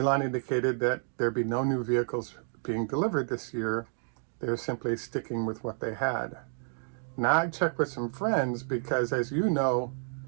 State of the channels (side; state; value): left; silent; digital silence